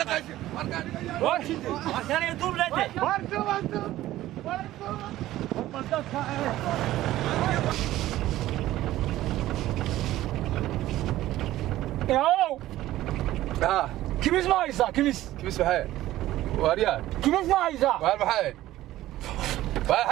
واركان يدوب لاتي. واركو. ياو كميس ما يسا كميس بحال واريان كميس ما يسا وار بحال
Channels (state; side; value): quieter; left; 15.0 dB